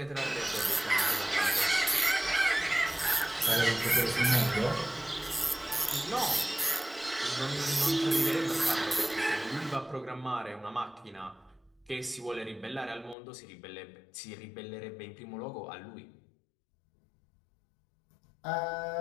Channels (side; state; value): right; drops out; at 13.2 s